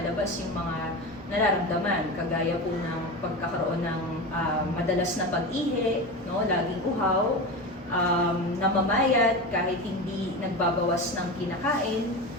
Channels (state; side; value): normal; both; correlation 0.24